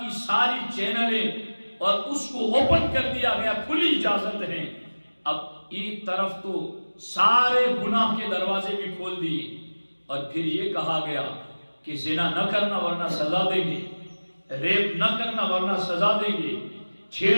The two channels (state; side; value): inverted; both; correlation -1.00